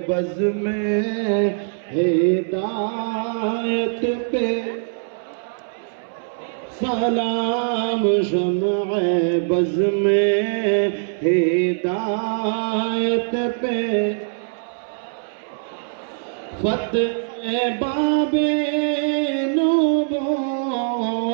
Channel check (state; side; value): silent; left; 64 dB below the other